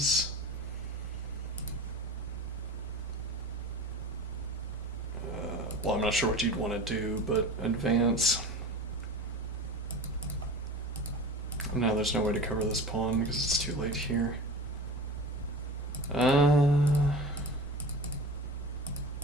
well, I'm not sure what you'd want to do, but advance. Now there's no way to cover this pawn because it's too late here. Like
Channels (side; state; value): both; normal; correlation 0.35